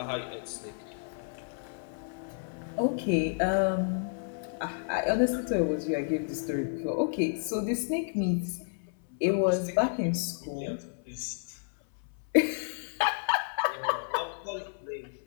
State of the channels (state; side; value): silent; right; 56 dB below the other